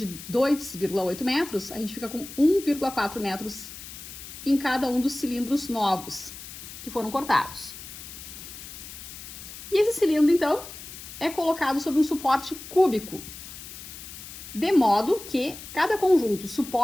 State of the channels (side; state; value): left; noise; hiss, 13 dB below the sound